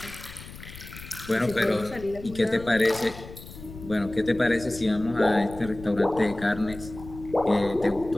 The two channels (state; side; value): noise; left; rumble, 15 dB below the sound